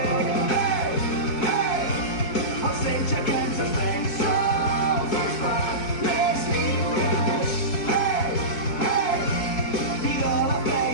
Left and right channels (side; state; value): right; late; 4.6 ms